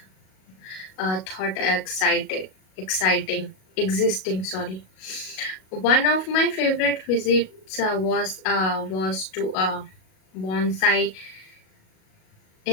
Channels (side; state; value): right; late; 37 ms